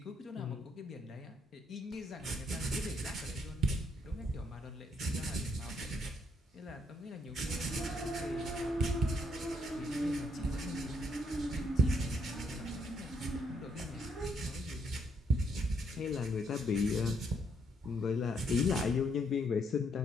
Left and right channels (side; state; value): both; normal; correlation 0.73